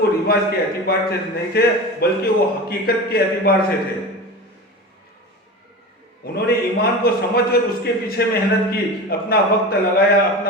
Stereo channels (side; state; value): both; normal; correlation 0.29